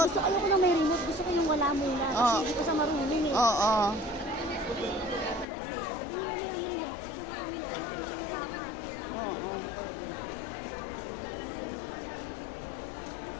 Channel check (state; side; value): drops out; right; at 5.5 s